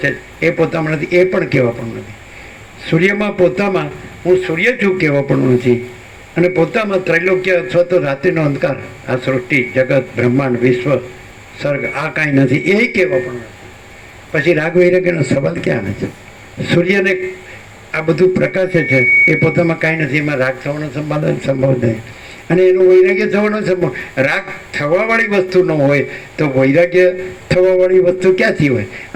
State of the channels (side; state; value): both; identical; correlation 1.00